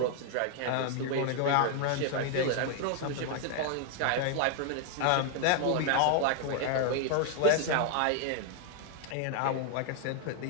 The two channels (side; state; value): both; different; correlation 0.00